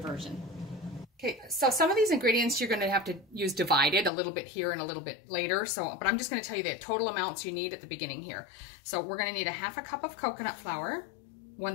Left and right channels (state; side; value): drops out; right; at 4.1 s